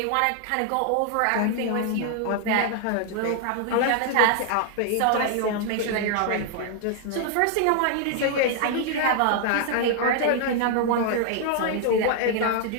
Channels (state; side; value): different; both; correlation 0.00